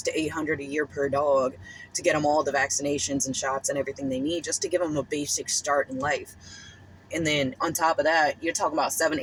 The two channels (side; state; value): both; identical; correlation 1.00